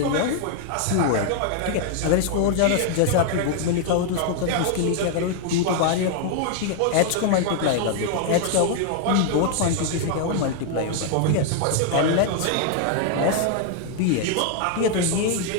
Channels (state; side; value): different; both; correlation 0.00